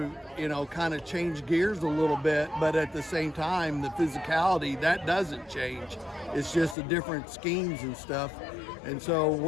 you know, kind of change gears a little bit, but at the same time, the physicality, that doesn't change. It's just the different schemes and stuff. And so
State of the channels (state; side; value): drops out; right; at 6.8 s